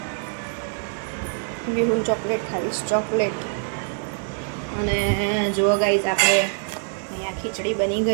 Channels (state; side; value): silent; left; 62 dB below the other